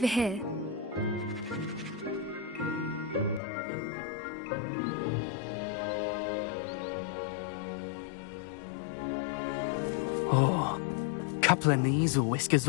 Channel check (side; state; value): right; drops out; at 3.4 s